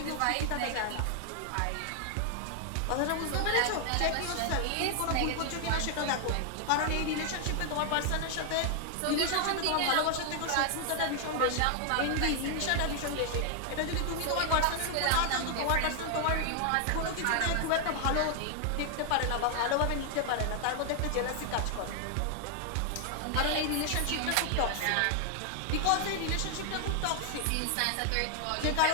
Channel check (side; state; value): both; different; correlation 0.00